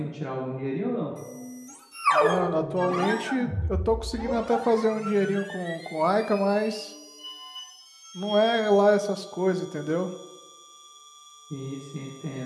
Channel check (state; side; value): identical; both; correlation 1.00